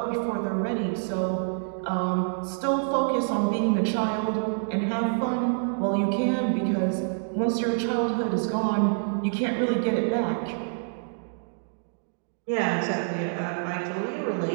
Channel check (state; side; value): silent; left; digital silence